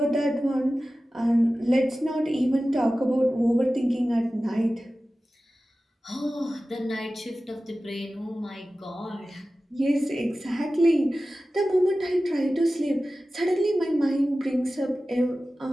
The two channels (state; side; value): normal; both; correlation 0.95